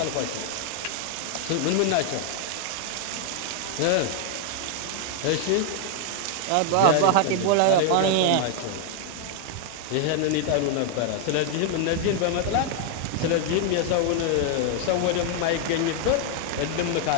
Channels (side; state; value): both; different; correlation 0.00